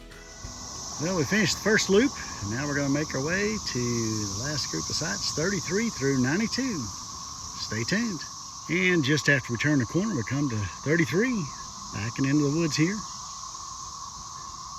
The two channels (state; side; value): identical; both; correlation 1.00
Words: Well, we finished the first loop, and now we're going to make our way to the last group of sites, 33 through 92. Stay tuned. And just after we turn the corner, we come to 33, backing into the woods here.